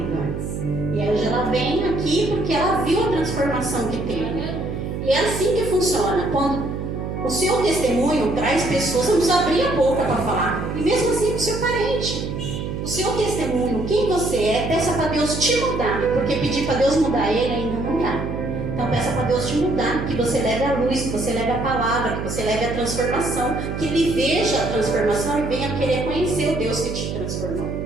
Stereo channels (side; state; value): right; noise; hum, 5 dB below the sound